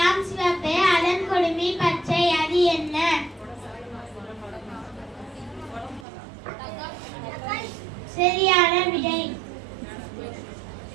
சிவப்பே அலங்கொடுமி பச்சை, அது என்ன? சரியான விடை.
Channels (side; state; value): left; drops out; at 6.1 s